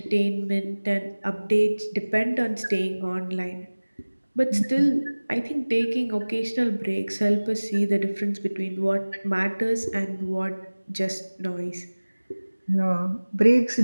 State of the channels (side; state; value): both; inverted; correlation -1.00